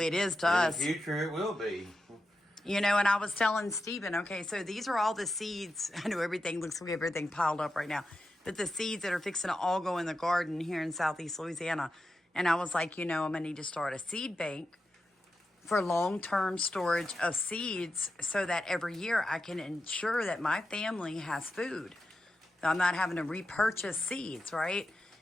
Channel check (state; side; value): normal; both; correlation 0.89